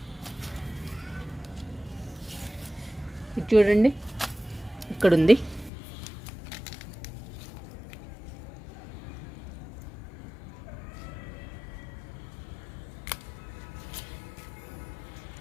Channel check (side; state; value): right; drops out; at 5.7 s